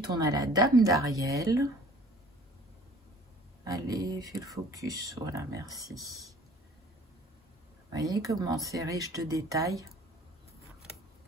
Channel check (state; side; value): normal; both; correlation 0.50